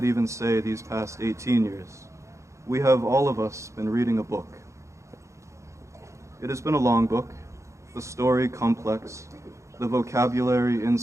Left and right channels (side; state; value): left; late; 0.14 ms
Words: even say these past 18 years, we have all of us been reading a book. It has been a long book, the story complex, the vocabulary